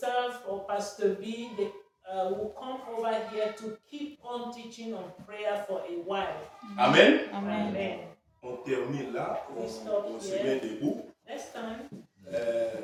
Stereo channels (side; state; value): both; identical; correlation 1.00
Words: or Pastor B, they will come over here to keep on teaching on prayer for a while. Amen. Amen. On termine là, on se met debout. Next time.